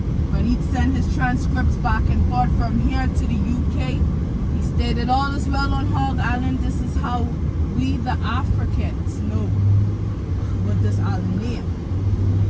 When he'd send his transcripts back and forth from here to the UK, he stated, all is well on Hog Island. This is how we, the Africans, know what this island name.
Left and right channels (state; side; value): identical; both; correlation 1.00